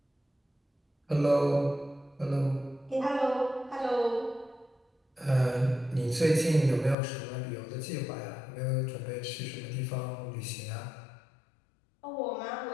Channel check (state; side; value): drops out; right; at 7.0 s